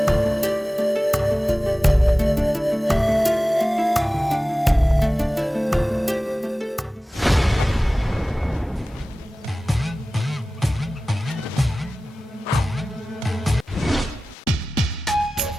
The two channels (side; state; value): both; normal; correlation 0.96